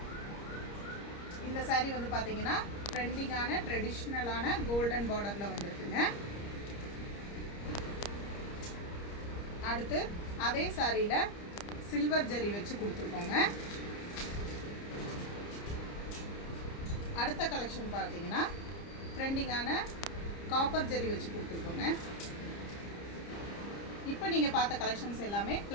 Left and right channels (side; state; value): right; late; 30 ms